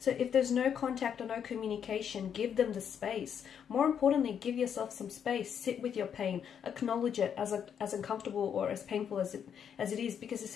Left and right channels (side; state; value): right; quieter; 8.1 dB